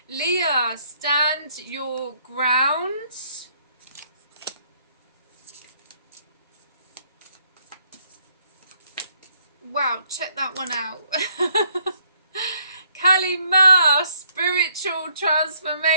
Leah, stand your ground. Wow, check that one out. Kalima, spiritual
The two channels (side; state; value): both; inverted; correlation -0.68